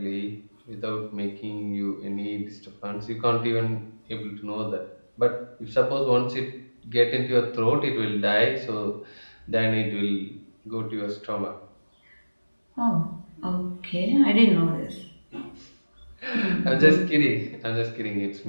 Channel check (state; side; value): inverted; both; correlation -1.00